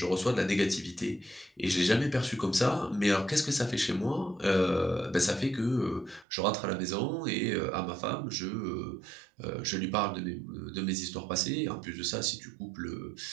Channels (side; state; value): left; drops out; at 6.2 s